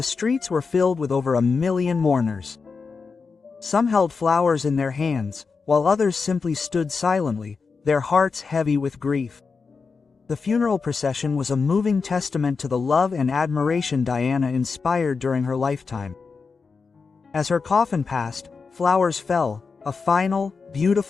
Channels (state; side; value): quieter; right; 4.9 dB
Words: streets were filled with over 1 million mourners. Some held flowers in their hands, while others simply stood silently, their hearts heavy with grief. The funeral procession was a moving testament to the love and admiration Diana inspired during her lifetime. As her coffin passed, flowers fell, a final,